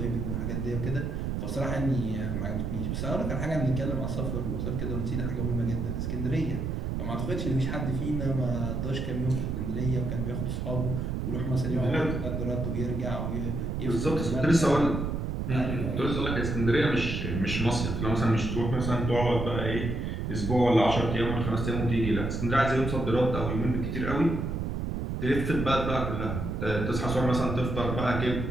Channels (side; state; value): right; noise; rumble, 2 dB below the sound